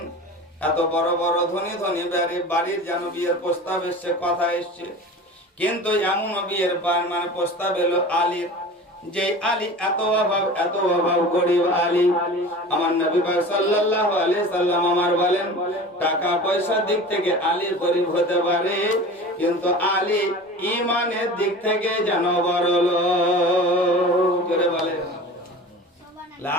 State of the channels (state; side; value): normal; both; correlation 0.36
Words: এত বড় বড় ধনী বাড়ির যেন বিয়ের প্রস্তাব এসছে, কথা এসছে, কিন্তু এমন বিয়ের মানে প্রস্তাব এলো আলীর, যে আলী এত অভাব গরিব আলী। আমার নবী পাক সাল্লাল্লাহু আলাইহি সাল্লাম আমার বলেন, টাকা পয়সার দিক থেকে আলী গরিব হতে পারে, কিন্তু আলী ঈমানের দিক থেকে যেন বড় লোক। জোরে বলেন